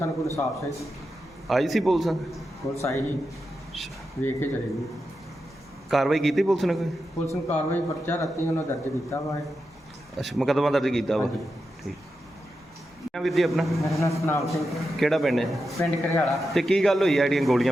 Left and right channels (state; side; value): normal; both; correlation 0.89